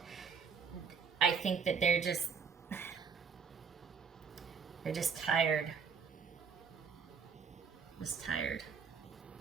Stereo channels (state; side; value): quieter; left; 6.0 dB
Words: I think that they're just tired. Just tired.